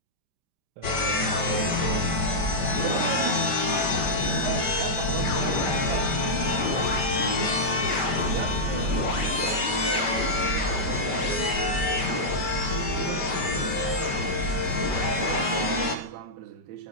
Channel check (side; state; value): left; late; 5.1 ms